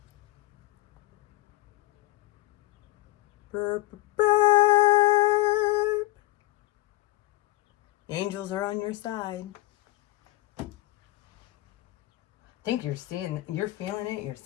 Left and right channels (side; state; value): right; quieter; 18.8 dB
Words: Burp, burp. The angels are on your side. I think you're feeling it, you're